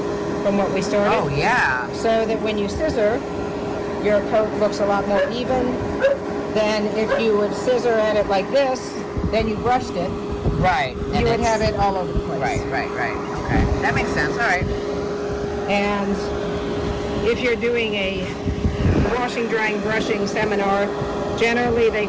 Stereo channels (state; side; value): identical; both; correlation 1.00